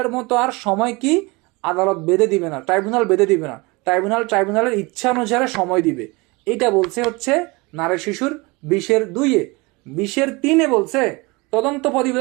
মতো আর সময় কি আদালত বেঁধে দিবে না, ট্রাইব্যুনাল বেঁধে দিবে না। ট্রাইব্যুনালের ইচ্ছা অনুসারে সময় দিবে। এটা বলছে হচ্ছে নারী শিশুর 20(2)। 20(3) বলছে তদন্ত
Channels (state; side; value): quieter; left; 25.4 dB